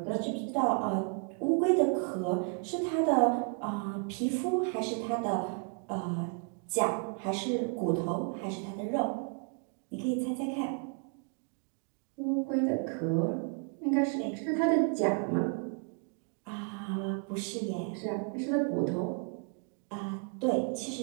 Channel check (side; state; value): left; quieter; 38.9 dB